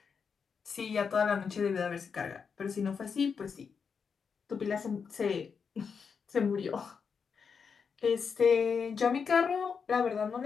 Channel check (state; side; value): quieter; right; 6.0 dB